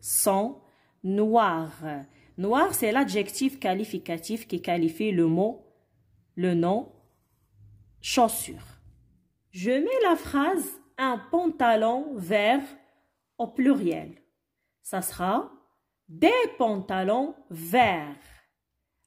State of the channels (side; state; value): both; identical; correlation 1.00